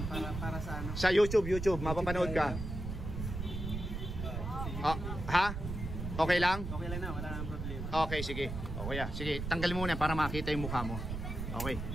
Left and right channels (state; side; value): noise; right; rumble, 5 dB below the sound